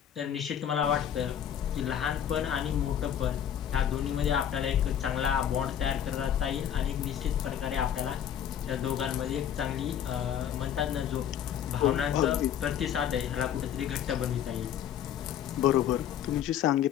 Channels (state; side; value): quieter; right; 9.6 dB